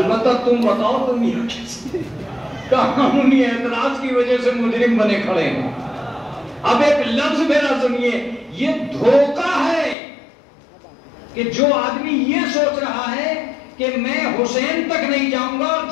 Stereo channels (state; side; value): drops out; right; at 10.0 s